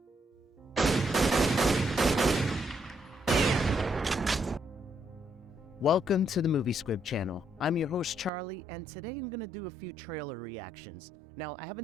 Welcome to the Movie Squib channel. I'm your host Charlie, and today I'm going to do a few trailer reactions. Now, I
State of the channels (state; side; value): drops out; left; at 8.3 s